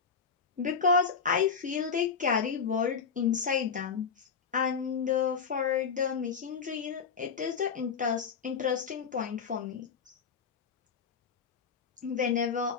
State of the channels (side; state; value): right; quieter; 6.0 dB